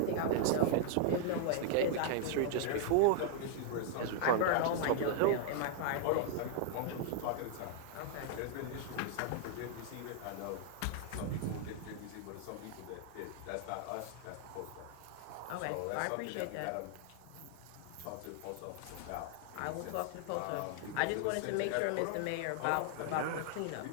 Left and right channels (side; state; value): both; different; correlation 0.00